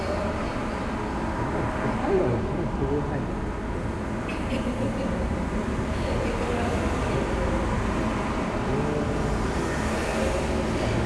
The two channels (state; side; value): identical; both; correlation 1.00